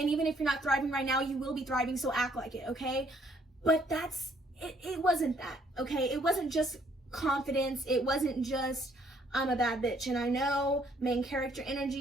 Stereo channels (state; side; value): normal; both; correlation 0.66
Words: even if you're not thriving right now, you will be thriving, so act like it, okay? But it wasn't that, okay? It wasn't just confidence. It wasn't just, I'm a bad bitch. And I know, main character